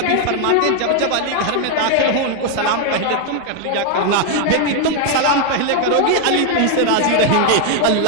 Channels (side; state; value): both; different; correlation 0.00